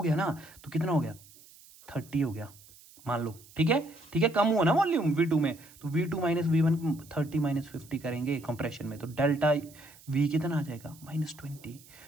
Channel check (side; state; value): right; noise; hiss, 23 dB below the sound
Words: गया ना, तो कितना हो गया, 30 हो गया मान लो, ठीक है, ठीक है, कम हुआ ना वॉल्यूम V2 में, तो V2 माइनस V1 30 माइनस 50 करेंगे कंप्रेशन में, तो डेल्टा V कितना आ जाएगा, -20।